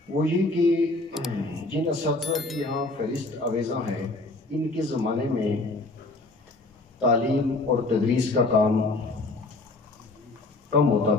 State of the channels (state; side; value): quieter; right; 3.0 dB